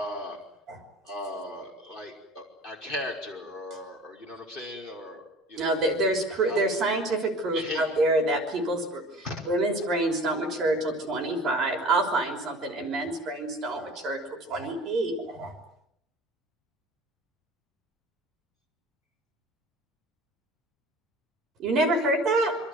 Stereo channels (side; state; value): both; normal; correlation 0.42